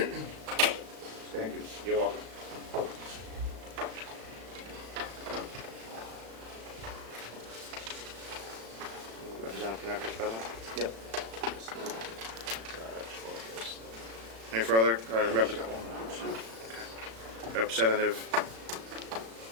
Thank you. You're welcome. Representative Connectors, present? Yep. Any further? Representative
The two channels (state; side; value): late; left; 36 ms